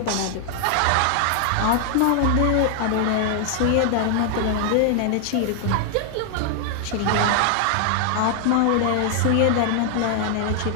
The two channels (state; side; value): different; both; correlation 0.00